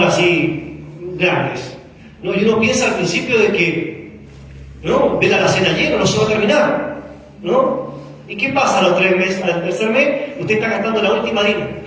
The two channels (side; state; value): both; identical; correlation 1.00